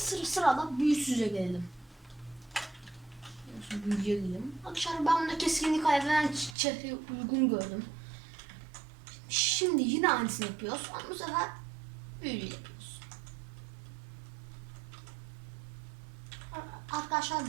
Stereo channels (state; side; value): drops out; left; at 6.6 s